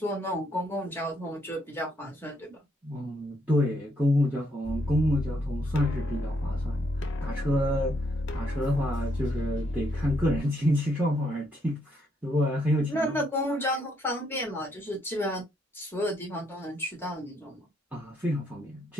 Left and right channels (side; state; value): both; normal; correlation 0.74